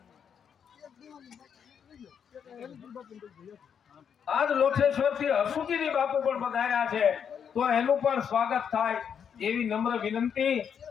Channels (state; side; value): quieter; right; 7.6 dB